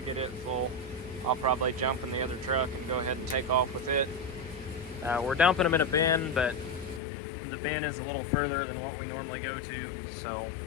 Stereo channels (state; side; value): drops out; right; at 7.0 s